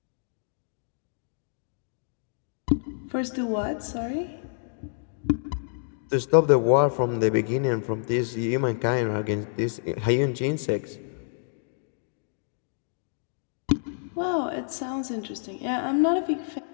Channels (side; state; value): right; silent; digital silence